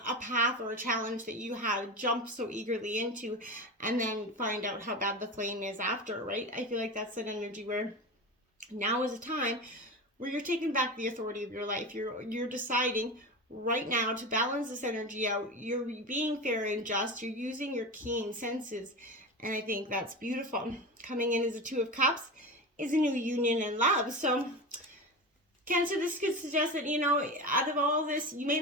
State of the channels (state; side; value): normal; both; correlation 0.25